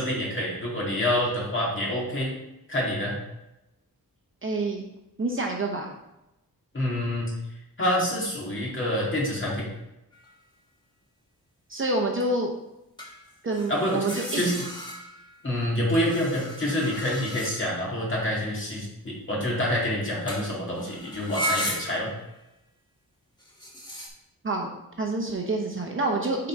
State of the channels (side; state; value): both; normal; correlation 0.28